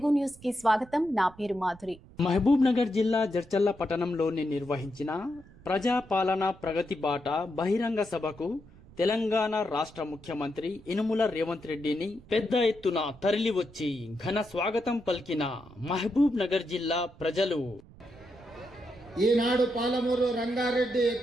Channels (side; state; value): right; noise; rumble, 22 dB below the sound